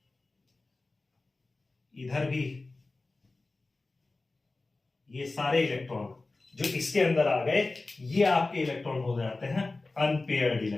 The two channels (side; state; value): right; quieter; 3.3 dB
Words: इधर भी, ये सारे इलेक्ट्रॉन जो इसके अंदर आ गए ये आपके इलेक्ट्रॉन हो जाते हैं अनपेयर्ड